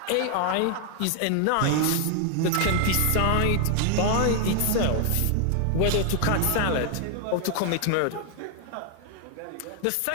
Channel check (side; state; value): both; different; correlation 0.00